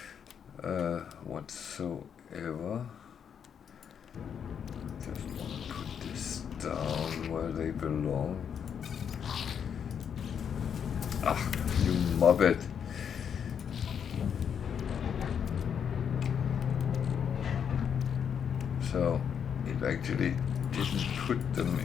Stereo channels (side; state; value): right; quieter; 7.7 dB